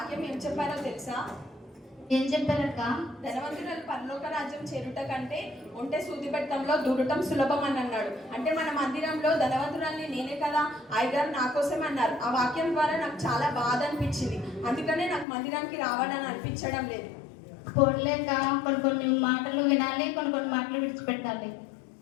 ఏం చెప్పారో తెలుసా? ఏం చెప్పారక్క? ధనవంతురాలు పరలోక రాజ్యం చేరుట కంటే ఒంటె సూది పెట్టంలో దూరటం సులభం అని అన్నాడు. అంటే మన మందిరంలో ధనవంతురాల్ని నేనే కదా, అయ్యగారు నా కోసం అన్నారు. ఆ వాక్యం ద్వారా నాకు చాలా బాధ అనిపించింది. అందుకనే నాకు మందిరానికి రావాలని అనిపించడం లేదు. పోలేక కొన్ని మాటలు వినాలి, కొన్ని మాటలు విడిచిపెట్టాలి.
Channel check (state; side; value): drops out; right; at 15.2 s